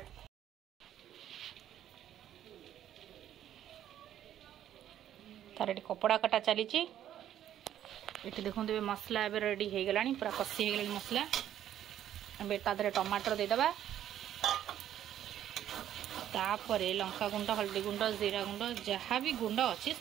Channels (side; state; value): left; quieter; 11.2 dB